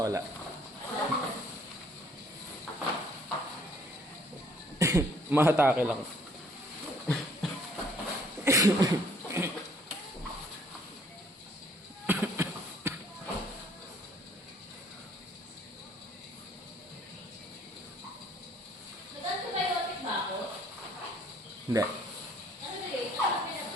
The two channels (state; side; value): normal; both; correlation 0.61